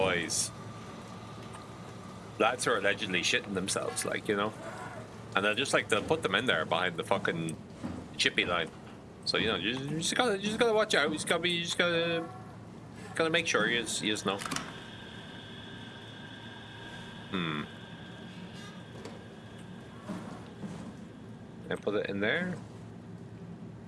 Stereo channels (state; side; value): identical; both; correlation 1.00